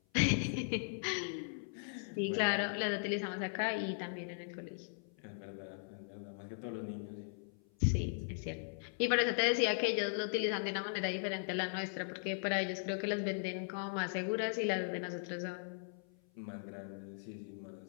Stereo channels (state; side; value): silent; right; 52 dB below the other